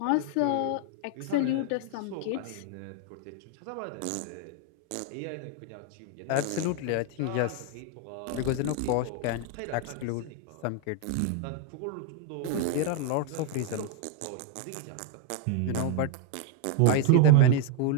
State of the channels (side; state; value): both; different; correlation 0.01